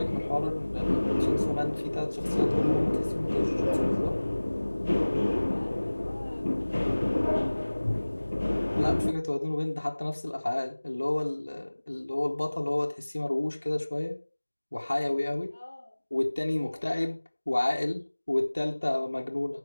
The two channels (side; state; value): both; inverted; correlation -1.00